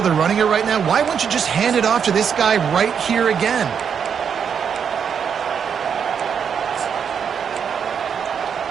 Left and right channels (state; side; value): quieter; left; 7.2 dB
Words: they're running it right now, why wouldn't you just hand it off to this guy right here again?